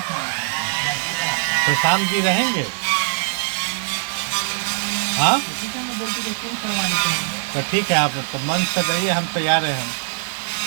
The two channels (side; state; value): left; silent; 56 dB below the other